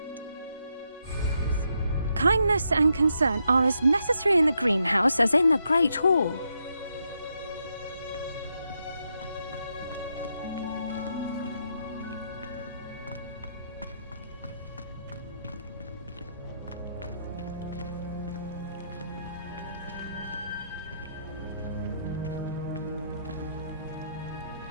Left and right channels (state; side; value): inverted; both; correlation -0.79